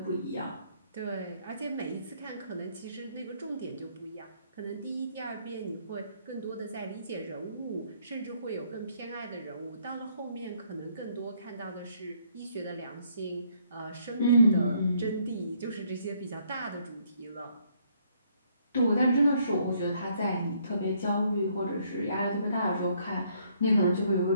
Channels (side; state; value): both; inverted; correlation -0.67